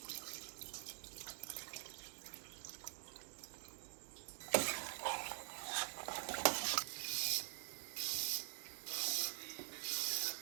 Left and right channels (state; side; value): silent; left; digital silence